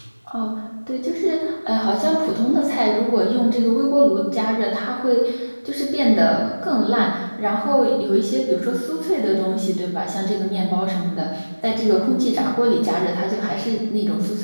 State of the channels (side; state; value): both; inverted; correlation -1.00